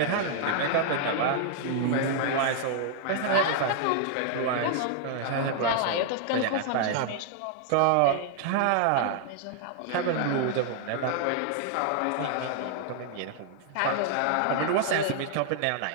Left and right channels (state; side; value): different; both; correlation 0.00